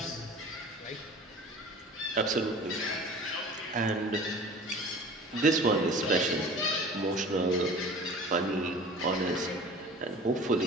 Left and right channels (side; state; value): both; normal; correlation 0.42